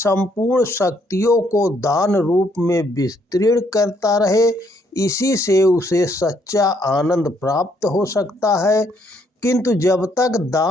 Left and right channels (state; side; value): normal; both; correlation 0.69